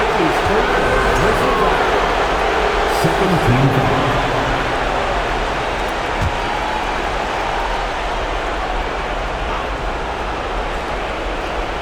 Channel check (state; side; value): identical; both; correlation 1.00